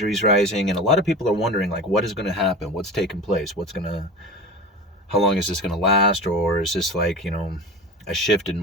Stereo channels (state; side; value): normal; both; correlation 0.32